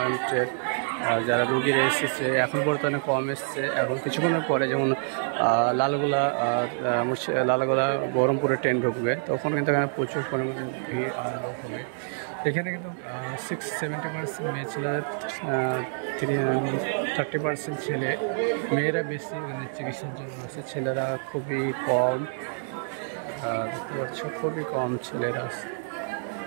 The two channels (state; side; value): silent; left; 60 dB below the other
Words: যারা রুগীরা এসেছে। এখন বর্তমানে কম এসছে, এখন কিছুক্ষণের পরে যেমন লালগোলা বহরমপুরে ট্রেন ঢুকবে, তখন কিন্তু এখানে প্রচুর পরিমাণে ভিড় আর লোক হবে। এখানে কিন্তু 70% মেয়ে ছেলেদের 30% ছেলে, মেয়েরা বেশি এখানে চিকিৎসার জন্য আসে। ছেলেরা খুবই কম, দেখতে পাচ্ছ খুবই কম ছেলেরা আছে।